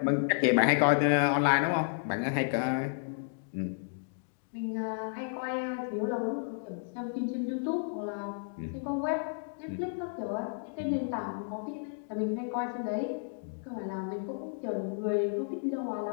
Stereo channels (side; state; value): right; silent; digital silence